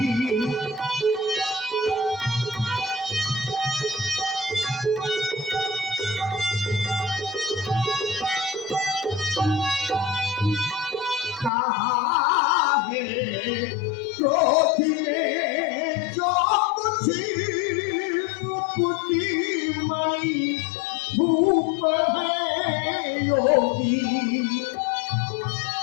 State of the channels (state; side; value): drops out; right; at 11.5 s